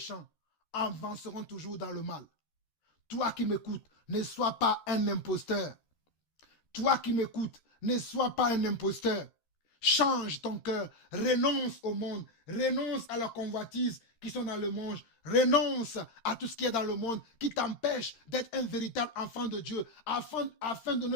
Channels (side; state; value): right; late; 13 ms